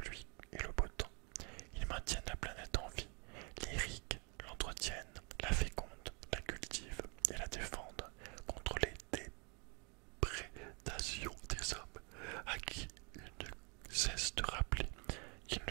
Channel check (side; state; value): left; quieter; 33.1 dB